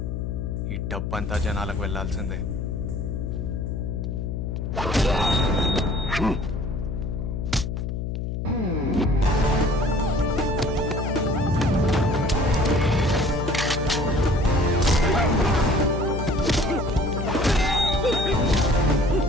ఈ డబ్బంతా జనాలకు వెళ్ళాల్సిందే.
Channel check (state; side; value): noise; left; hum, 3 dB below the sound